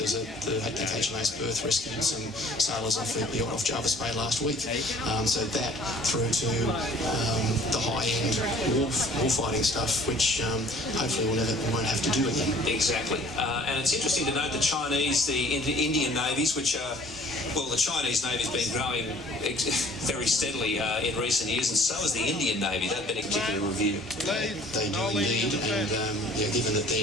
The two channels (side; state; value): both; normal; correlation 0.52